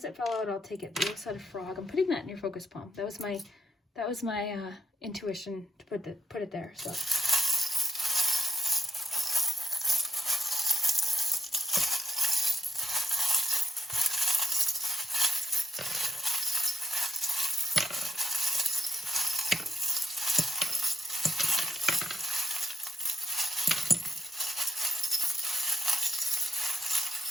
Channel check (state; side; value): normal; both; correlation 0.80